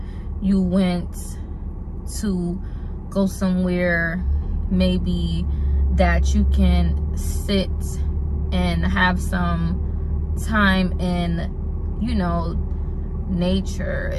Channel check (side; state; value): both; identical; correlation 1.00